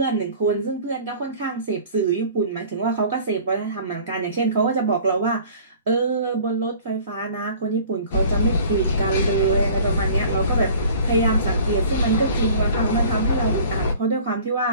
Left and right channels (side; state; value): both; inverted; correlation -0.46